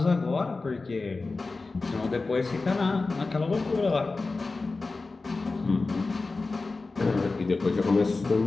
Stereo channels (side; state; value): right; quieter; 3.7 dB